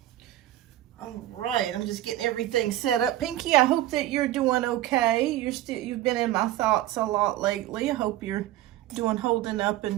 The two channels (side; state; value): left; quieter; 14.4 dB